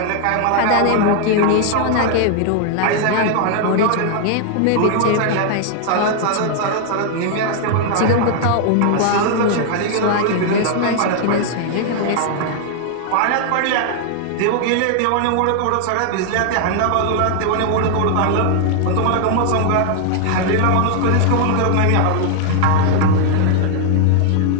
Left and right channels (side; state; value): both; different; correlation 0.00